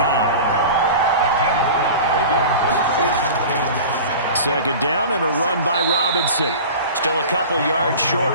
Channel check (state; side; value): inverted; both; correlation -0.36